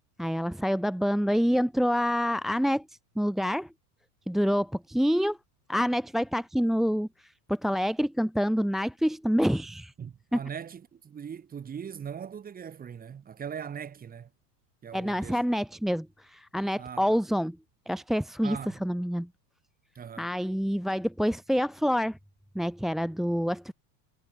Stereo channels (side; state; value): both; normal; correlation 0.98